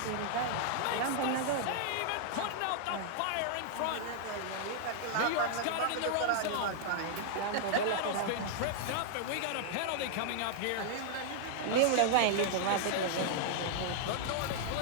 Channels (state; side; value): different; both; correlation -0.01